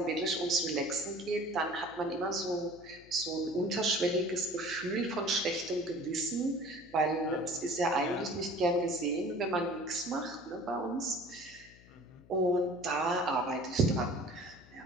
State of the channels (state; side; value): noise; left; hum, 23 dB below the sound